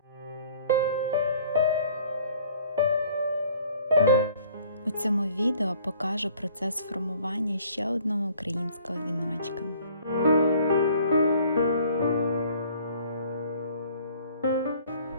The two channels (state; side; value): inverted; both; correlation -0.55